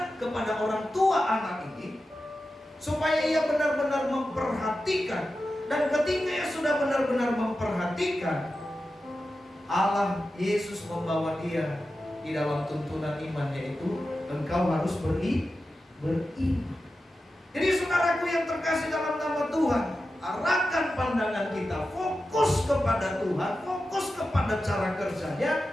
kepada orang tua anak ini, supaya ia benar-benar memperhatikan. Dan ketika ia sudah benar-benar memperhatikan, Allah Yesus membawa dia di dalam tuntunan iman, yaitu engkau harus beriman. Jadi saudaraku yang terkasih dalam nama Tuhan, arahkan pandangan kita, fokus kepada Tuhan, fokus kepada cara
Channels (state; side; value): normal; both; correlation 0.92